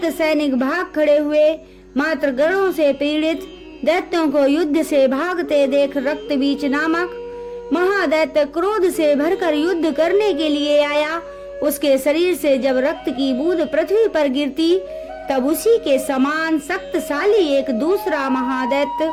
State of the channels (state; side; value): identical; both; correlation 1.00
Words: सैनिक भाग खड़े हुए। मात्र गणों से पीड़ित दैत्यों को युद्ध से भागते देख रक्तबीज नामक महादैत्य क्रोध से भरकर युद्ध करने के लिए आया। उसके शरीर से जब रक्त की बूंद पृथ्वी पर गिरती तब उसी के समान शक्तिशाली एक दूसरा महादैत्य